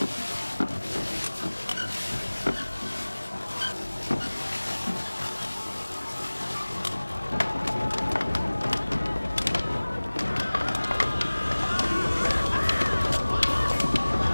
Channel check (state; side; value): inverted; both; correlation -1.00